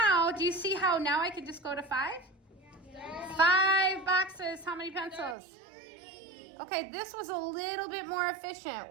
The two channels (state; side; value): drops out; left; at 5.4 s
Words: do you see how now I can just go to 5? 5 boxes. How many pencils? 30. Okay, this was a little bit more efficient,